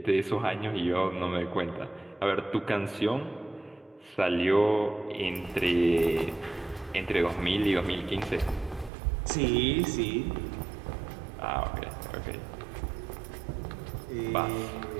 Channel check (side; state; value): left; drops out; at 8.9 s